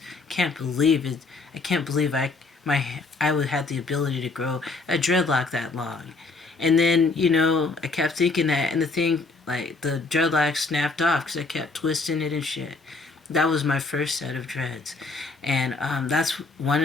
Can't believe it. I can't believe I would have the ability to grow a dreadlock that long. And then, I kept thinking that, and the thing, like, the dreadlock snapped off because I kept twisting it and shit. That was my first set of dreads. And that's one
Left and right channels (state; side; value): quieter; right; 3.7 dB